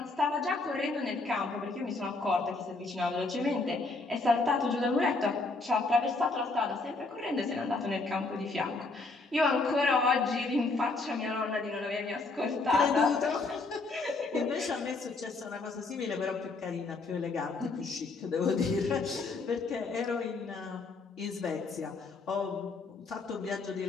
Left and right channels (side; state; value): right; quieter; 3.6 dB